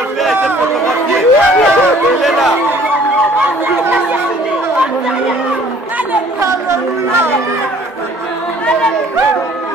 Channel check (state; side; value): normal; both; correlation 0.55